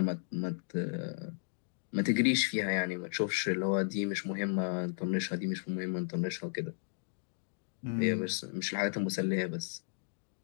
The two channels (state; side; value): silent; right; digital silence